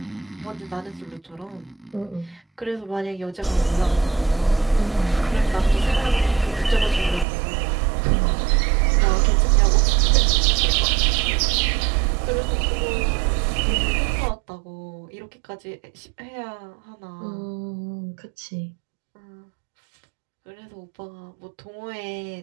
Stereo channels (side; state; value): left; drops out; at 7.2 s